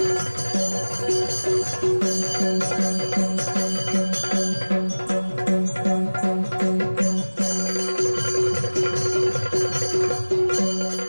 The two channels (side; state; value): both; inverted; correlation -1.00